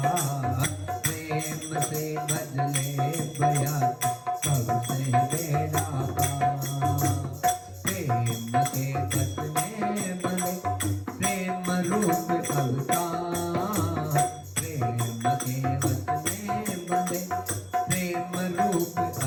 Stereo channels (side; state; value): both; identical; correlation 1.00